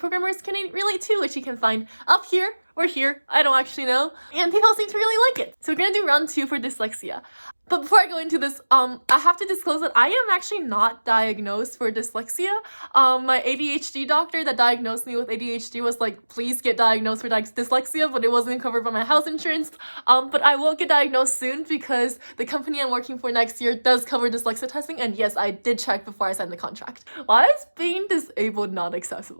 can relate to, which you can find up here or here, I don't actually know, and people seem to really like it. So we're gonna do round 2 for dyslexia. But before I go into this, I have to disclose that I am actually not diagnosed for dyslexia. My ADHD doctor that diagnosed me with ADHD was like, please get diagnosed for dyslexia, but it wasn't covered by my health insurance. But I will get diagnosed soon because the company I'm working for next year does cover dyslexia testing, and yes, I did check before I signed the contract. Why is being disabled not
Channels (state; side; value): inverted; both; correlation -1.00